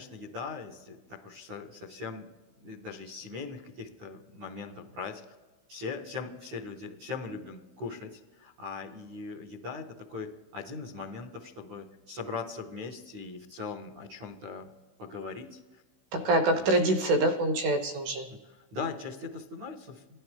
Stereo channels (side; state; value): left; late; 16 ms